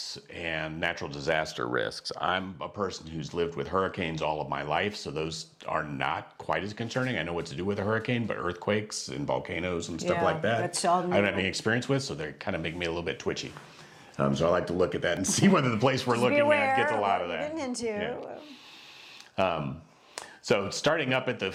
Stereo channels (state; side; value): identical; both; correlation 1.00